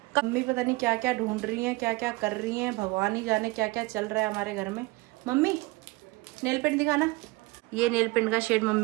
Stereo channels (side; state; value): left; quieter; 23.4 dB